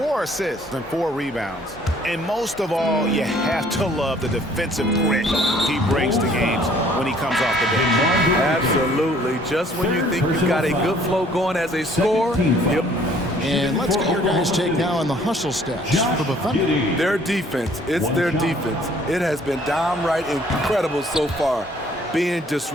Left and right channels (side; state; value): both; normal; correlation 0.58